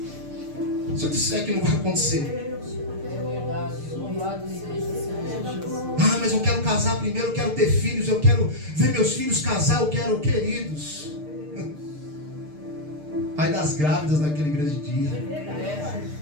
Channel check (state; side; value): late; left; 6.6 ms